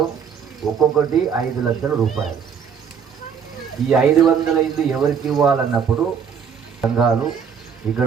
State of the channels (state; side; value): quieter; left; 7.0 dB